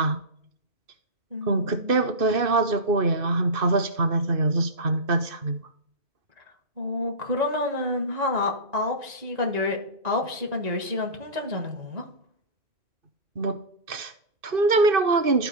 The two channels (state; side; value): late; left; 2.6 ms